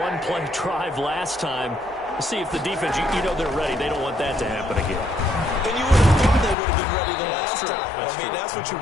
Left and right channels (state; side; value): drops out; right; at 6.6 s